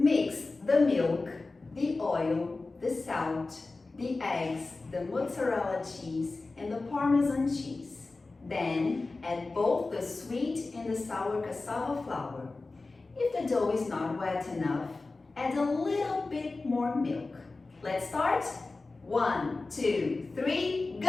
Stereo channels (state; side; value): quieter; right; 3.5 dB